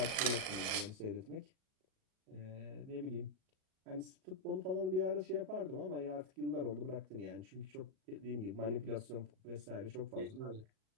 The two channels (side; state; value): left; late; 38 ms